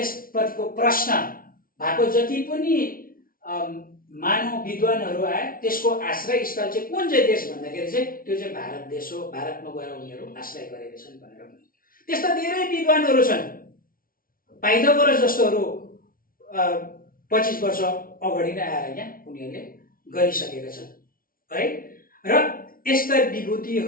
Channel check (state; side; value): late; right; 0.42 ms